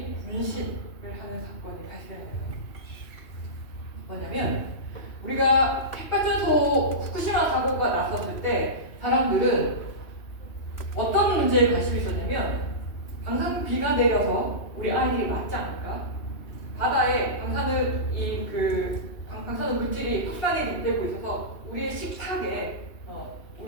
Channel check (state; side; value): late; right; 2.7 ms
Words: 분신을 하는 사건이 발생해요. 뭐냐면 우리가 핵발전소 후쿠시마 사고가 났었을 때 사람들은 어떤 문제에 관심이 있었냐면 방사선비가 내려서 우리 아이들이 맞지 않을까? 바다에 방사능 방사능 물질이 확산이 되고 있어서 우리의 식탁에